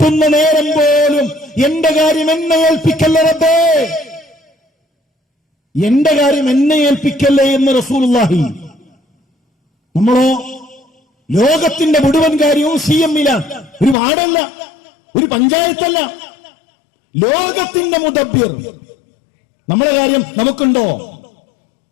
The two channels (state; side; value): drops out; right; at 14.0 s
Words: നേരം പോലും എന്റെ കാര്യം എന്നെ ഏൽപ്പിക്കല്ല റബ്ബേ. എന്റെ കാര്യം എന്നെ ഏൽപ്പിക്കല്ലേ എന്ന് റസൂലുള്ളാഹി. നമ്മളോ ലോകത്തിന്റെ മുഴുവൻ കാര്യവും CM-ലാണ്. ഒരു വാർഡല്ല, ഒരു പഞ്ചായത്തല്ല, ലോകത്തിന്റെ മുദബ്ബിർ. നമ്മളെ കാര്യം നമുക്കുണ്ടോ?